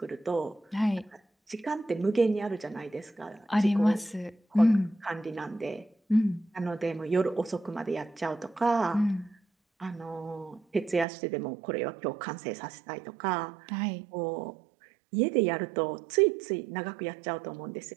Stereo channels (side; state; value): left; drops out; at 11.1 s